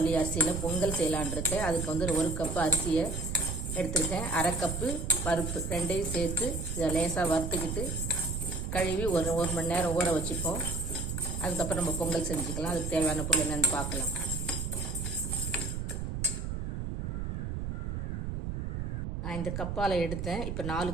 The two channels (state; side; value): noise; right; rumble, 3 dB below the sound